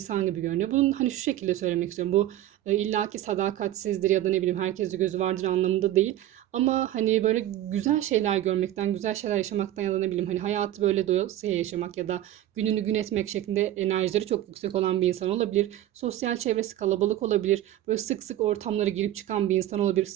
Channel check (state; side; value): quieter; left; 13.2 dB